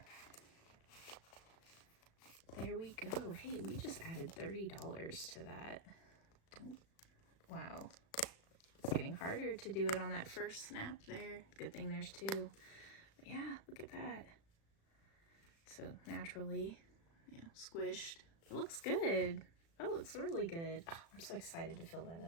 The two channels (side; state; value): right; late; 36 ms